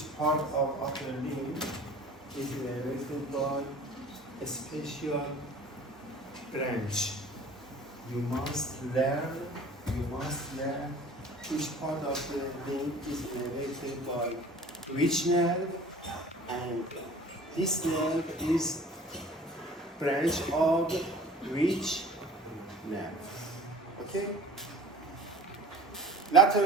part of upper limb is innervated by a special branch. You must learn each part of the limb is innervated by which nerve, and this nerve is branch of which nerve. Okay?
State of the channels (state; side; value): normal; both; correlation 0.45